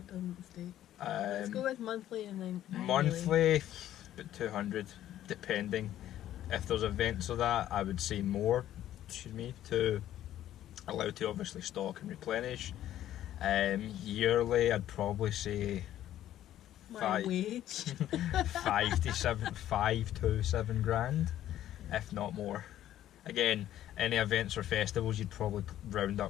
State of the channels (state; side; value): quieter; right; 12.4 dB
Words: doesn't state. Let's go with monthly and then annually. Monthly, about 200, depending. If there's events of that, I would say more, to allow to obviously stock and replenish. Yearly, I'd probably say My wage. 5 to 7 grand, if not more. Again, any events or festivals, you'd probably round